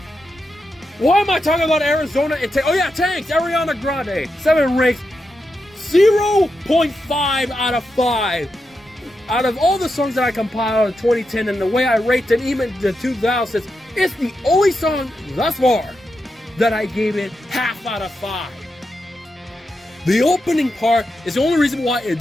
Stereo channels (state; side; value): normal; both; correlation 0.87